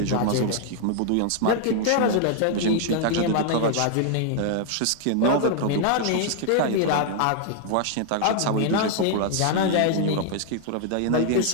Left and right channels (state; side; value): different; both; correlation 0.00